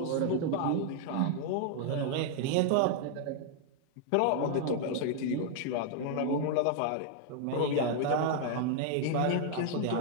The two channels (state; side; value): different; both; correlation 0.00